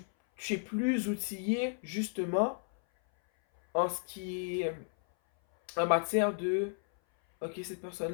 es plus outillé justement en ce qui est en matière de ok, cette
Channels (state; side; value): silent; right; 56 dB below the other